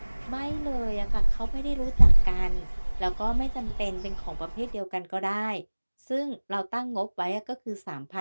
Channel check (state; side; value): inverted; both; correlation -1.00